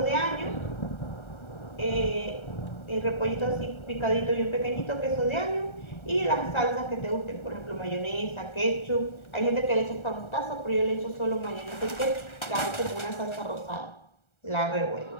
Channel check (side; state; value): right; late; 1.3 ms